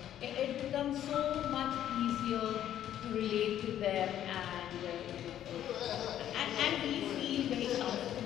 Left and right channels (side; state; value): right; quieter; 11.2 dB